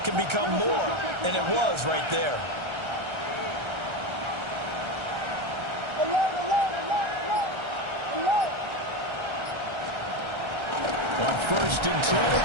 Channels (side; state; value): left; late; 1.3 ms